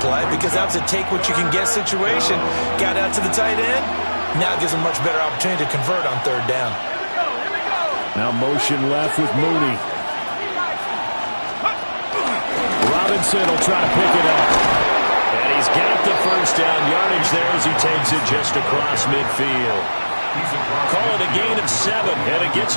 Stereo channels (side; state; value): both; inverted; correlation -1.00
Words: because that was a take-what-you-can-get situation. Got out to the tight end. Now it gives him a much better opportunity to convert on 3rd down. Now motion left with Mooney. Robinson will try to pick it up. And he's got the first down yardage there as he takes it just across midfield. Call it a gain of 7, and it gets